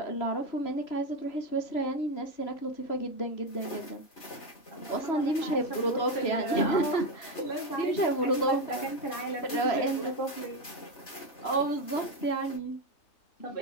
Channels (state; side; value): late; right; 3.0 ms